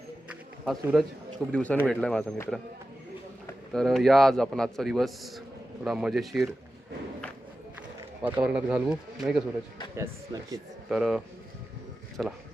हा सूरज, खूप दिवसांनी भेटला आहे माझा मित्र. तर या आज आपण आजचा दिवस थोडा मजेशीर वातावरणात घालवू, नाही का सूरज? यस, नक्कीच. तर चला,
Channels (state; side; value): normal; both; correlation 0.93